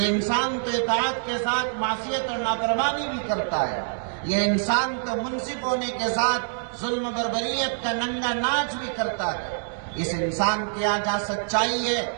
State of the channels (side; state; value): left; silent; digital silence